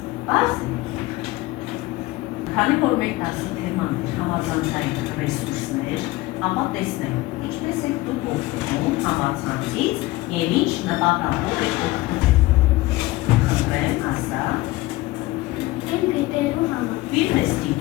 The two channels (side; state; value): right; quieter; 19.2 dB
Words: Պարզ է։ Քանի որ մեր դասի թեման է համացանցային ռեսուրսներ, ապա տեսնենք ինչպես եք դուք օգտվում համացանցից և ինչ նպատակով եք օգտվում։ Խնդրեմ, ասա։ Իմ գիտելու համար։ Ֆիլմ ես